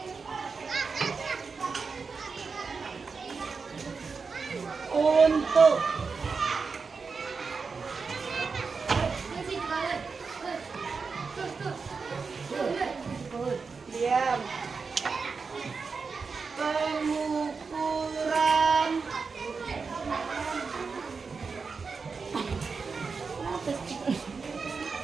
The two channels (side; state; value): left; quieter; 4.9 dB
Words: untuk diam pengukuran